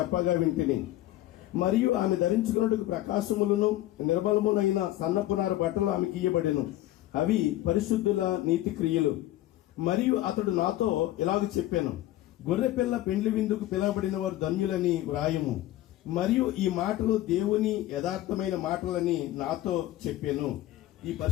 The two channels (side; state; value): right; quieter; 15.0 dB